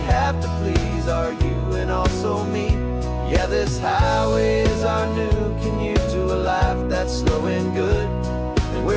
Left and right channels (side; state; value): both; identical; correlation 1.00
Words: have to please are you and also me. Yeah, this highway is our new commute to a life that's slow and good, and